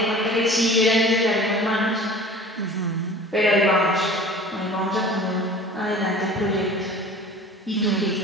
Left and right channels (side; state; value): both; normal; correlation 0.42